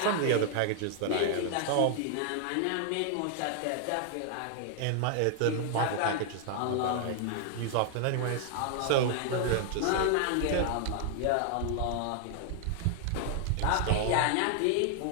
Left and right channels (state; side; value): different; both; correlation 0.00